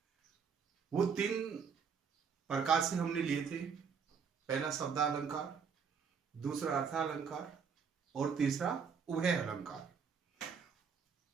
वो 3 प्रकार से हमने लिए थे। पहला शब्दालंकार, दूसरा अर्थालंकार और तीसरा उभय अलंकार।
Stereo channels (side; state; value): left; quieter; 6.2 dB